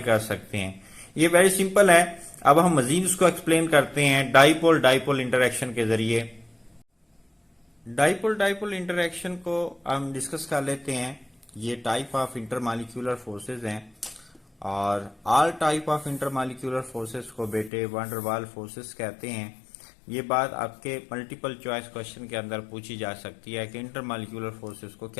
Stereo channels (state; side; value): drops out; right; at 17.7 s